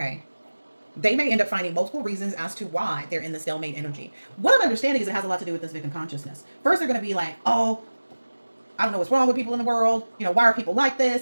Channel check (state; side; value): inverted; both; correlation -1.00